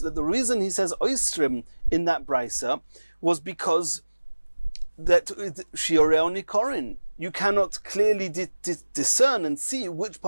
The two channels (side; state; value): both; inverted; correlation -1.00